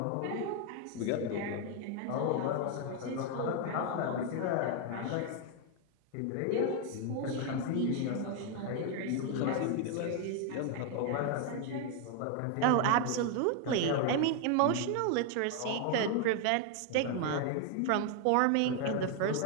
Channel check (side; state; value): both; different; correlation 0.01